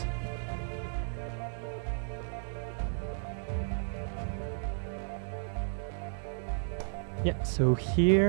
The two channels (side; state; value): left; silent; digital silence